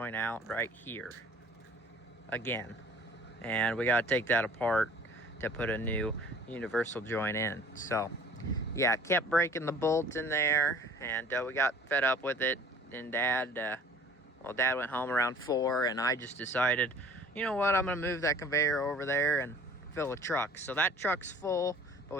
out right here again, and we got to take that apart to put a new universal joint in. So yeah, kept breaking the bolts in there, and we got fed up with it. And Dad went home around 4, and I just decided, you know what, I'm gonna move that conveyor over there and fill a truck. So that truck's full, but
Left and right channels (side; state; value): both; normal; correlation 0.50